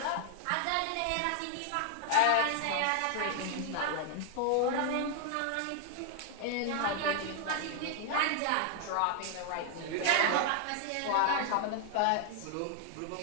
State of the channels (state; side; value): different; both; correlation 0.00